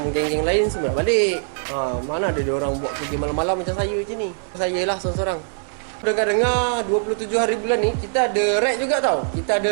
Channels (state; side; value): silent; left; digital silence